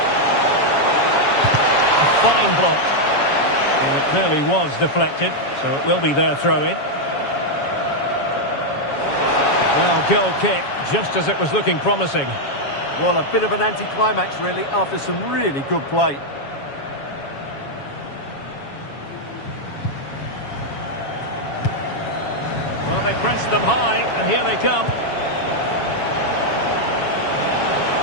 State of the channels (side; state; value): right; late; 7.2 ms